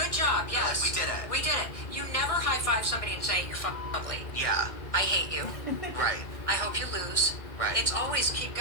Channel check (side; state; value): right; late; 1.6 ms